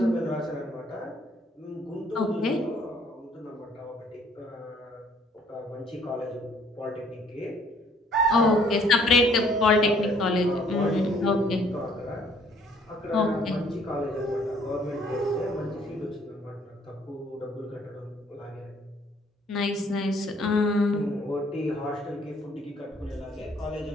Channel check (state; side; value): normal; both; correlation 0.61